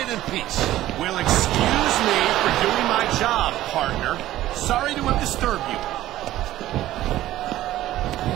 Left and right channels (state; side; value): quieter; left; 14.6 dB